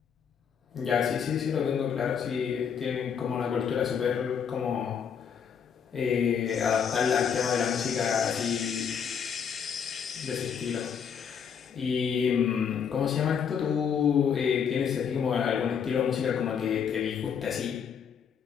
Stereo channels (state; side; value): quieter; right; 7.3 dB